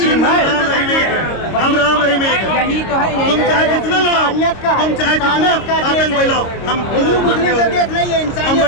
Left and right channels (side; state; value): right; late; 26 ms